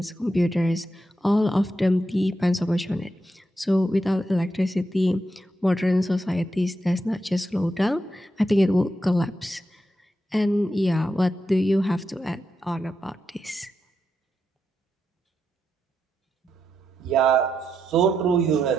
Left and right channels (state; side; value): normal; both; correlation 0.84